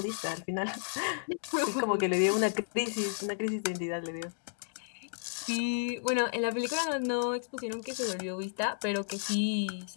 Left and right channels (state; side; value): silent; right; digital silence